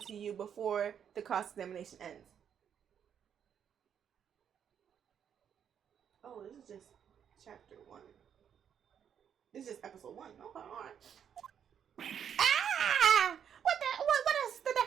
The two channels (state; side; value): quieter; left; 8.4 dB